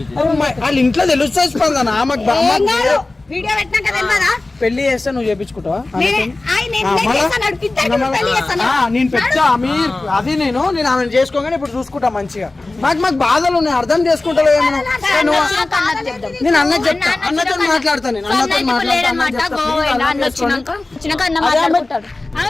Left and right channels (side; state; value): right; quieter; 3.1 dB